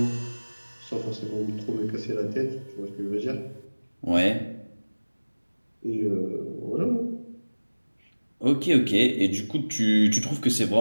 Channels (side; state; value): both; inverted; correlation -1.00